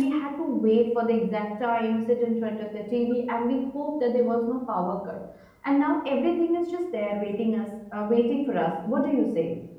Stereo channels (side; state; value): both; identical; correlation 1.00